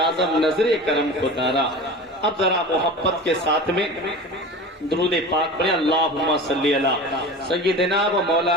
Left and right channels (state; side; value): normal; both; correlation 0.33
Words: نظر کرم خدارا۔ اب ذرا محبت کے ساتھ میں درود پاک پڑھیں، اللہم صلی علی سیدنا و